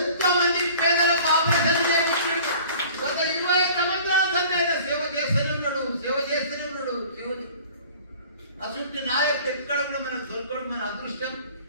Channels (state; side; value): inverted; both; correlation -0.47